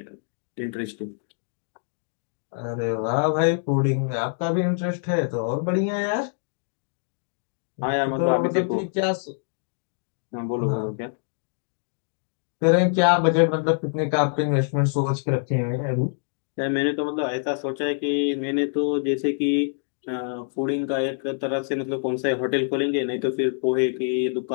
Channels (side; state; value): right; silent; digital silence